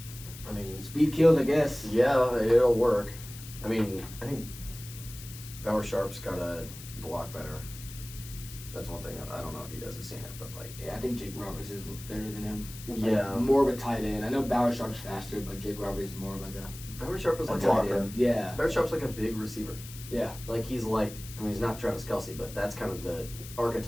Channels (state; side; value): noise; left; hiss, 14 dB below the sound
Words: I mean, speed kills, I guess. yeah, it'll work. I mean, I think Bauer Sharp's got to block better. That's one thing. I don't know if you guys have seen it, but like, Yeah, I think Jake Roberts is better than him. yeah, More of a tight end. I know Bauer Sharp's faster, but Jake Roberts is more of like a Bauer Sharp is like tight a end. Yeah, Bauer Sharp's like a big receiver. yeah. Like he's like, I mean, he's not Travis Kelce, but that's kind of the